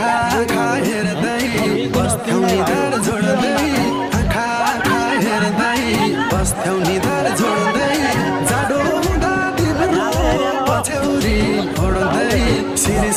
आँखा हेर्दै बस्थ्यौ निधार जोड्दै आँखा आँखा हेर्दै बस्थ्यौ निधार जोड्दै जाडो हुँदा तिम्रो पछ्यौरी ओड्दै सिरी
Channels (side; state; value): both; identical; correlation 1.00